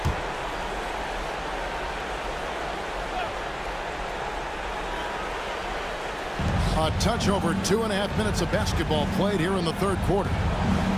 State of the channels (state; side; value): identical; both; correlation 1.00